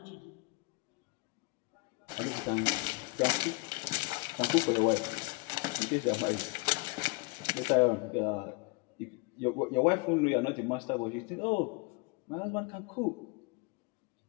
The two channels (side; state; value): right; quieter; 27.1 dB